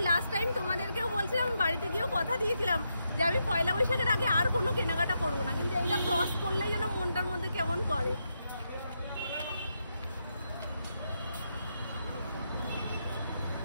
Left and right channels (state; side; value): inverted; both; correlation -0.82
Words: লাস্ট টাইম তোমাদেরকেও বলছিলাম, বাড়িতে গিয়েও কথা দিয়েছিলাম যে আমি পয়লা বৈশাখের আগে আর কোনো কেনাকাটা করবো না, কিন্তু এইটা ক্রস করলেই যেন মনটার মধ্যে কেমন করে।